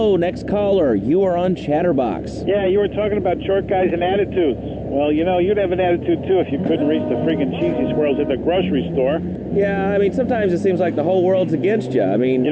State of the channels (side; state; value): both; identical; correlation 1.00